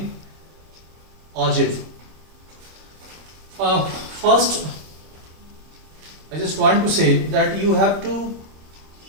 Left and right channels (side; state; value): left; late; 25 ms